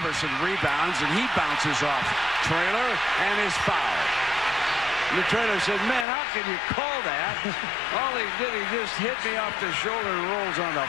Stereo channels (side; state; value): right; drops out; at 6.1 s